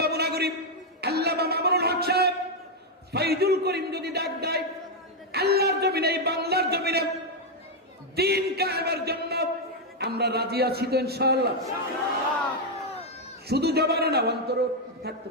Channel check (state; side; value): normal; both; correlation 0.01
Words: নাগরিক, আল্লামা মামুনুল হক সাহেব, ফাইজুল করিম যদি ডাক দেয়, আল্লাহর জমিনে, এই বাংলার জমিনে দ্বীন কায়েমের জন্য আমরা রাজি আছি তো ইনশাআল্লাহ। শুধু জবানে না, অন্তরে থাকতে